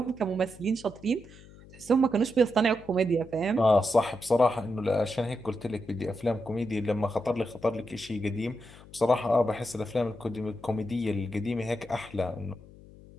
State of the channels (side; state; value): left; noise; hum, 21 dB below the sound